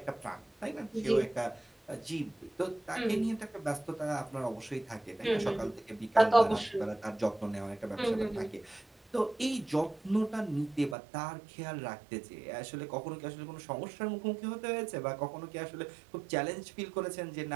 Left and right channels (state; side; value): drops out; left; at 11.0 s